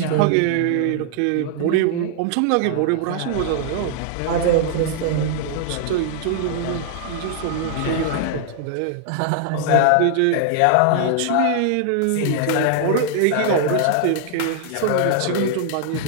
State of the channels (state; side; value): different; both; correlation -0.01